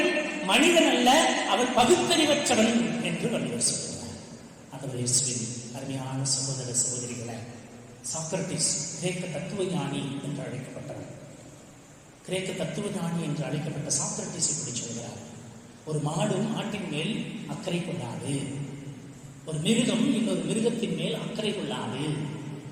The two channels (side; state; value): both; identical; correlation 1.00